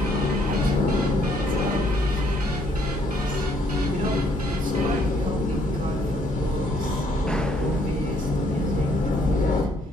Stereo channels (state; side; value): normal; both; correlation 0.67